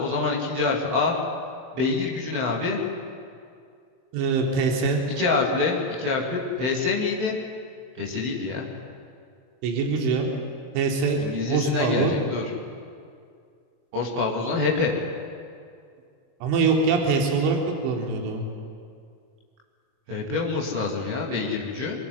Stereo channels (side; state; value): left; late; 23 ms